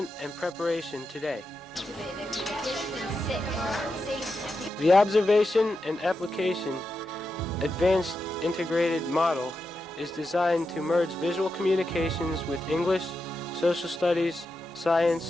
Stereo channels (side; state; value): both; normal; correlation 0.88